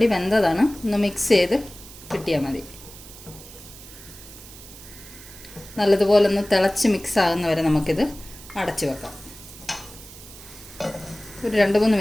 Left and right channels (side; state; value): right; noise; hiss, 17 dB below the sound